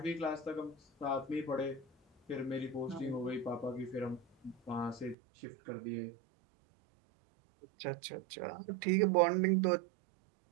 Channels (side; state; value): left; drops out; at 5.2 s